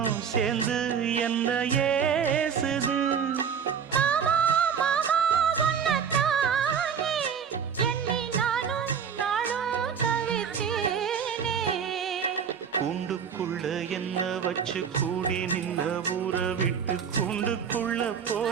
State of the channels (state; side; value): quieter; left; 7.2 dB